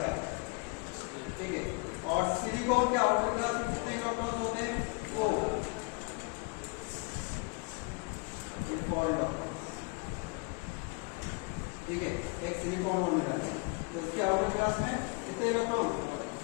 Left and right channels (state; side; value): quieter; right; 31.0 dB